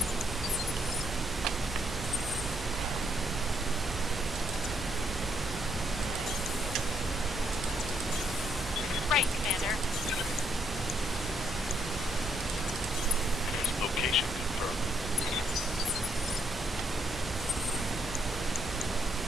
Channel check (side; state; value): right; noise; hum, 11 dB below the sound